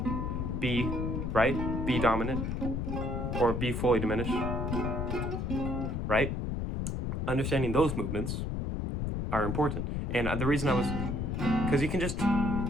B, right? B dominant, or B fully diminished, right? Understanding those movements are important. And the reason I was, because you can just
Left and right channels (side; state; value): left; noise; rumble, 1 dB below the sound